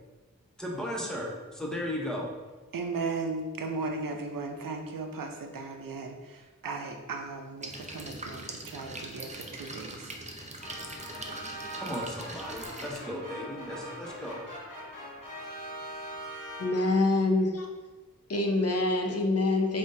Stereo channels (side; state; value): both; normal; correlation 0.44